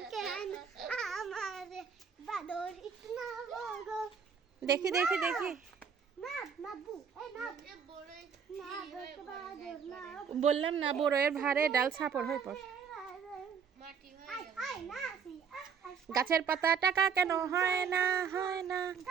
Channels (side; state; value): left; quieter; 6.7 dB